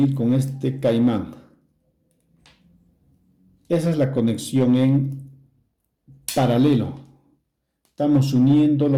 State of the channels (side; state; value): both; identical; correlation 1.00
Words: con este caimán. Esa es la conexión en paralelo. Estamos uniendo